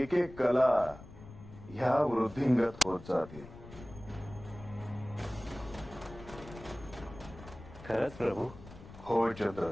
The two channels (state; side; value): noise; left; rumble, 16 dB below the sound